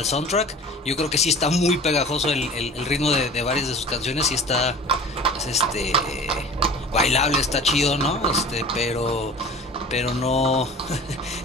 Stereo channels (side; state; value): both; normal; correlation 0.41